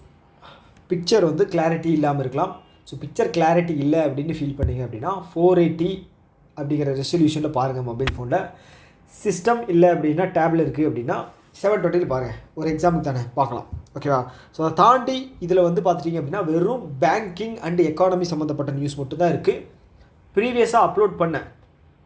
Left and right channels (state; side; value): identical; both; correlation 1.00